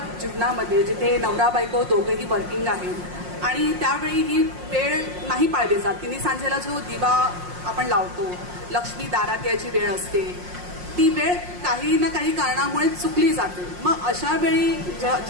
जीवनामध्ये जिथे नवरा बायको दोघेही वर्किंग आहेत आणि त्यावेळी ही वेळ नाही पाळली जात. तिन्ही सांजेला जो दिवा आपण लावतो, लक्ष्मी दारात यायची वेळ असते, ती वेळ काही ना काही कारणामुळे चुकली जाते. मग अशा वेळी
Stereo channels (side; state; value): left; late; 5.6 ms